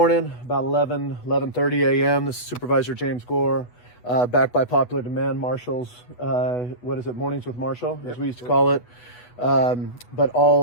about 11:30 a.m. This is Supervisor James Gore, back by popular demand, Marshall's, Mornings with Marshall, as we used to call it. But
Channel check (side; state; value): right; late; 8.2 ms